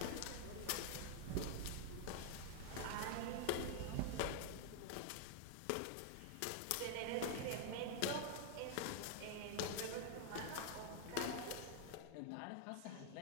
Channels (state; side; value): different; both; correlation 0.00